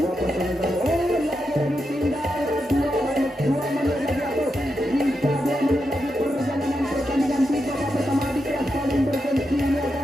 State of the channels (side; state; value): both; normal; correlation 0.86